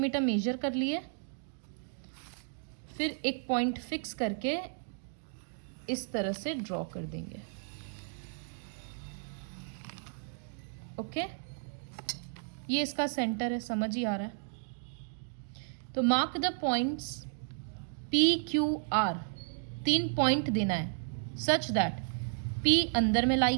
मेजर कर लिए, फिर एक पॉइंट फिक्स करके इस तरह से ड्रॉ कर देंगे। ओके, ये इसका सेंटर है, समझ ही आ रहा है। तो mark the points PQR, 3 point देना है सच दैट P अंदर में लाई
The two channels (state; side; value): silent; left; digital silence